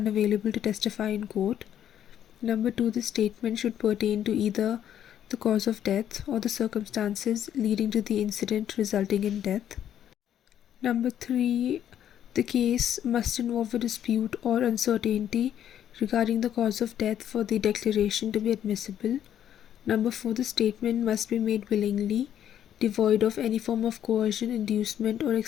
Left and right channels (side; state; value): right; quieter; 10.3 dB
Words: to testify in court. Number 2, the statement should pertain to either the cause of death or the circumstances leading to the incident resulting in death. Number 3, the case must involve a dispute or uncertainty regarding the cause of death for the declaration to be admissible. Number 4, the statement must be made willingly, devoid of any form of coercion, inducement, or